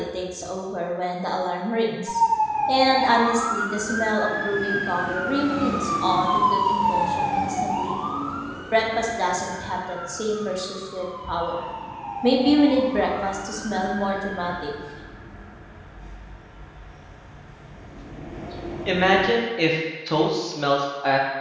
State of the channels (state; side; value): identical; both; correlation 1.00